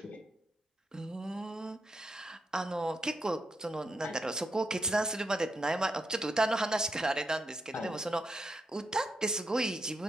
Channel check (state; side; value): normal; both; correlation 0.83